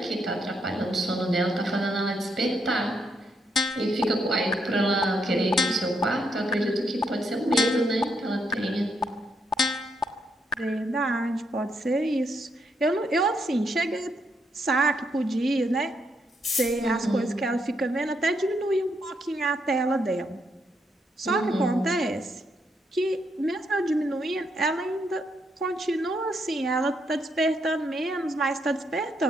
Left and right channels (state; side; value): normal; both; correlation 0.77